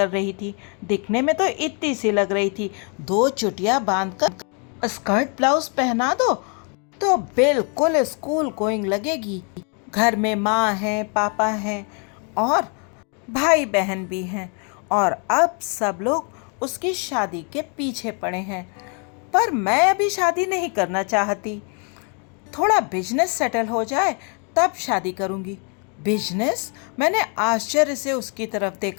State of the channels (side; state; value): right; quieter; 37.5 dB